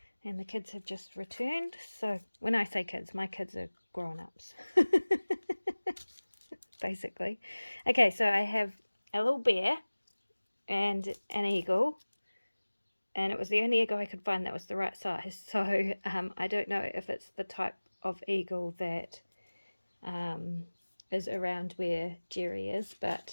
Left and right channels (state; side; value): inverted; both; correlation -1.00